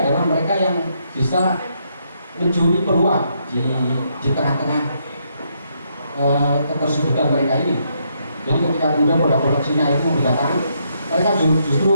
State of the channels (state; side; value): inverted; both; correlation -0.76